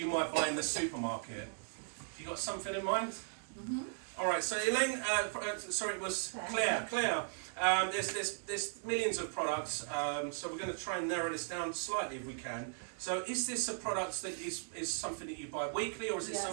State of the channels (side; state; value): left; silent; digital silence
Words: might buy in the supermarket. Have you got something in mind? Mm-hmm. All right, so Elaine, sorry, it was Claire. Claire, there's millions of products, so we're going to try and narrow this down slightly if we can. So is this a product that is something that you buy weekly, or is it